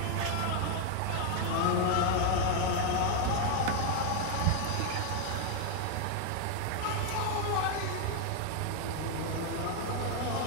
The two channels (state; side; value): different; both; correlation 0.01